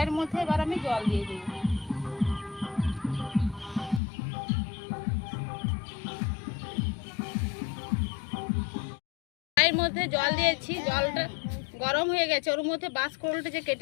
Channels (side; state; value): right; drops out; at 4.0 s